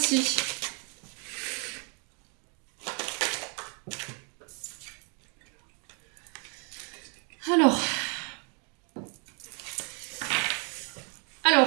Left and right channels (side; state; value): left; quieter; 36.7 dB